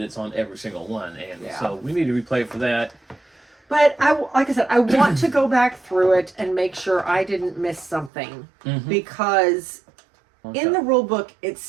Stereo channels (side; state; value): left; drops out; at 8.1 s